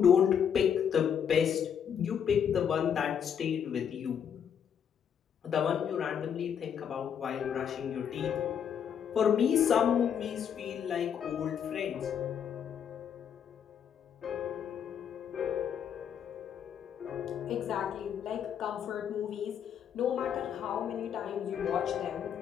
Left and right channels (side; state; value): right; quieter; 8.2 dB